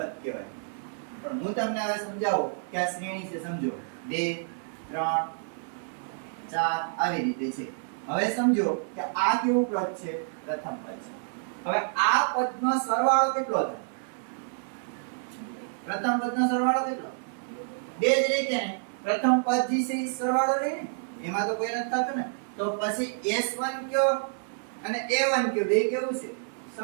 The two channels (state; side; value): silent; left; digital silence